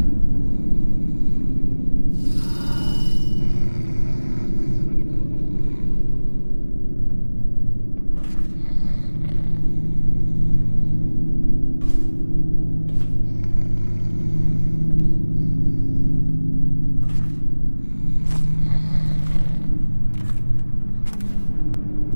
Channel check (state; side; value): inverted; both; correlation -1.00